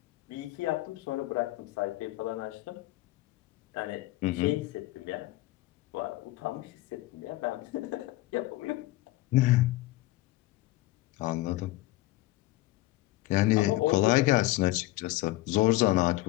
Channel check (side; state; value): right; quieter; 18.1 dB